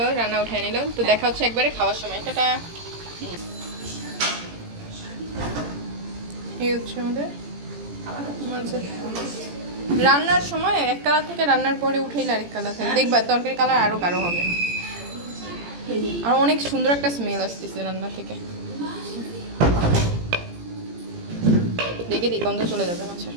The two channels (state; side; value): late; left; 17 ms